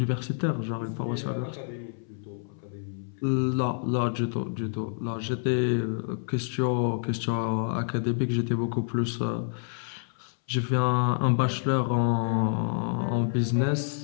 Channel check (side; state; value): right; silent; 59 dB below the other